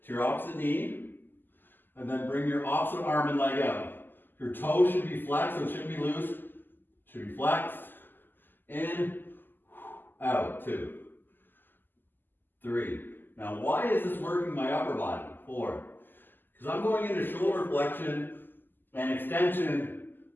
to your opposite knee, and then bring your opposite arm and leg out. Your toe should be flexed, so it shouldn't be loose. It should be flexed. In, out. 2, 3. Now, why is this working my upper body? 4. Because I'm going into shoulder flexion and extension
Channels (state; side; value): late; right; 0.091 ms